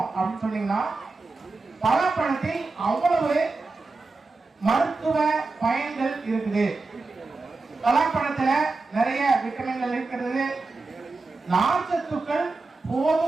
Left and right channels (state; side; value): quieter; left; 3.7 dB